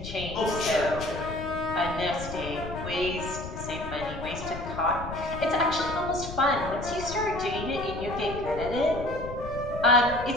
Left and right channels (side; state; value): left; noise; rumble, 10 dB below the sound